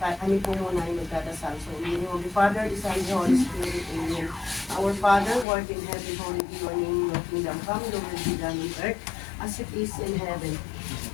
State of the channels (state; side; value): drops out; right; at 5.5 s